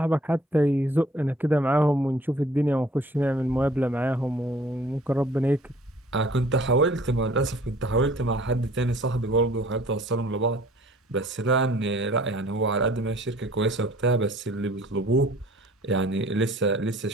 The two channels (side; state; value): both; normal; correlation 0.53